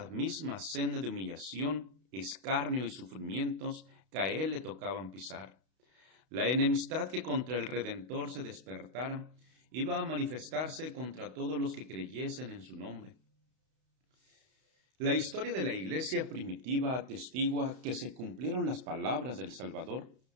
misma senda de humillación, escarnio y sufrimientos que a él le tocaban pisar. La enemistad que contra el Redentor se despertara iba a manifestarse contra todos los que creyesen en su nombre. La historia de la Iglesia primitiva atestigua que se cumplieron las palabras del Salvador.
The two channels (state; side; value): late; left; 32 ms